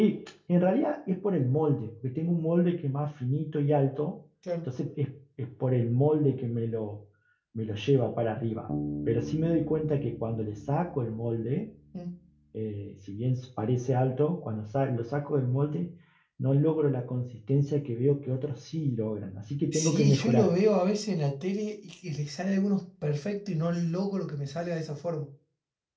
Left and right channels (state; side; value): identical; both; correlation 1.00